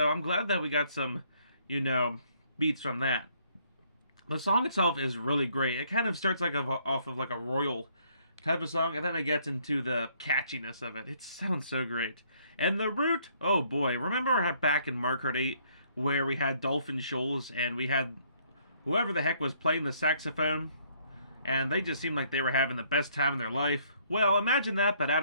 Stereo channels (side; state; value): both; inverted; correlation -0.65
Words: I'm glad that we got some, you know, beats from that. The song itself is really great. It kind of starts off of like a royal type of song, and then it gets into the catchiness of it. It sounds so great. And the root, oh boy, remember back in Mario Kart 8 where we had Dolphin Shoals and we had whoever the heck was playing the saxophone, and they just seemed like they were having the best time of their life? Well, imagine that, but